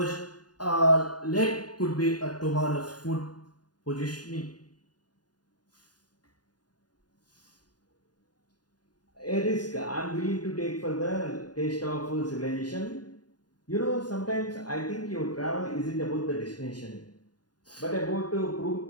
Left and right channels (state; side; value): late; right; 0.70 ms